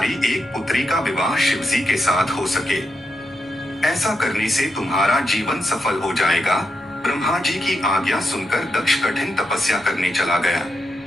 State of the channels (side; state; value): both; normal; correlation 0.84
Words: एक पुत्री का विवाह शिव जी के साथ हो सके। ऐसा करने से तुम्हारा जीवन सफल हो जाएगा। ब्रह्मा जी की आज्ञा सुनकर दक्ष कठिन तपस्या करने चला गया।